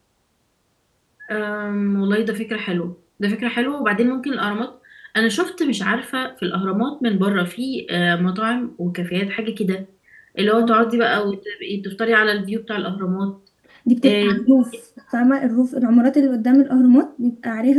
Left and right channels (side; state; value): both; identical; correlation 1.00